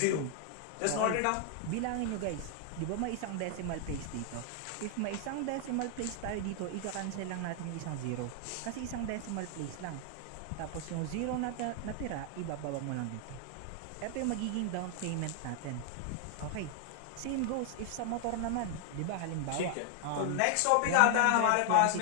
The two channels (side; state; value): both; different; correlation 0.00